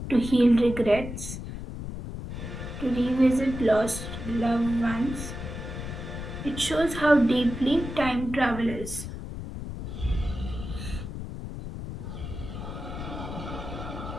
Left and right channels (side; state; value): left; noise; rumble, 8 dB below the sound